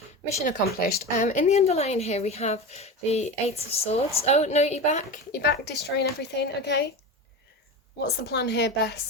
Mission accomplished. In the underlying here, we have the Eight of Swords. Oh, no, you're back. You're back destroying everything, okay? What's the plan here,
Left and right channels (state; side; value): normal; both; correlation 0.26